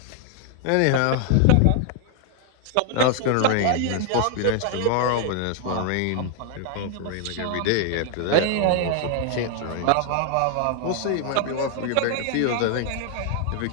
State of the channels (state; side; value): different; both; correlation 0.00